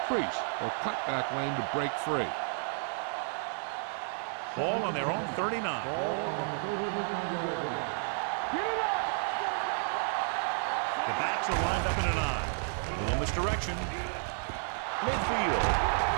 crease or cutback lane to break free. Ball on their own 39. Ball on the 39-yard line. Get it up. The backs are lined up in an I. A little misdirection. Midfield.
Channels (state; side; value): silent; left; 57 dB below the other